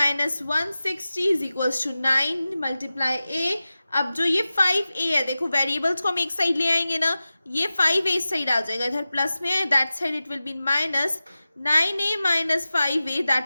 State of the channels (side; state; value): both; inverted; correlation -0.95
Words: 160 is equals to 9 multiply a। अब जो ये 5a है, देखो वेरिएबल्स को हम एक साइड ले आएंगे ना, ये 5a इस साइड आ जाएगा, इधर प्लस में है, that side it will B minus 9a minus 5a,